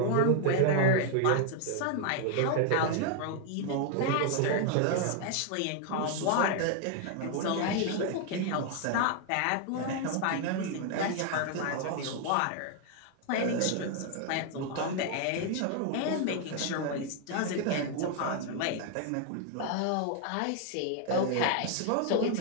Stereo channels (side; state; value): both; different; correlation 0.00